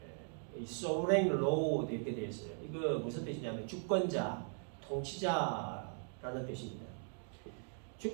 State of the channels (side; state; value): left; silent; 52 dB below the other